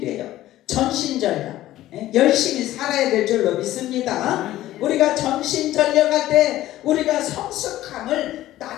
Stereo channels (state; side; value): quieter; right; 14.7 dB